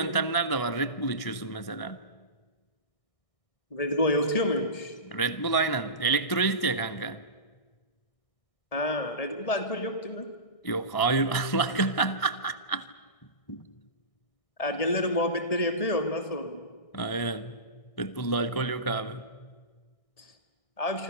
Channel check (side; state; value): right; late; 1.6 ms